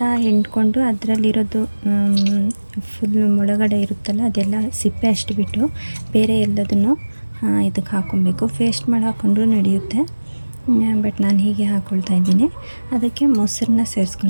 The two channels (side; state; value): both; inverted; correlation -1.00